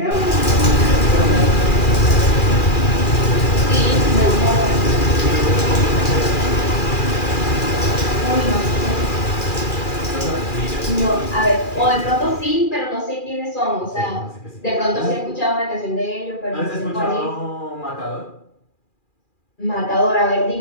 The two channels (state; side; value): late; right; 2.4 ms